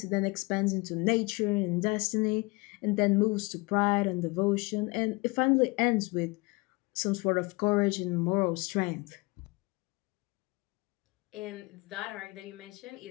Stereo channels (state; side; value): quieter; right; 26.0 dB